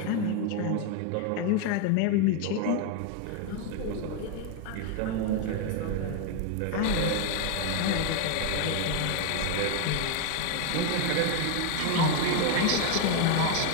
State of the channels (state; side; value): different; both; correlation 0.01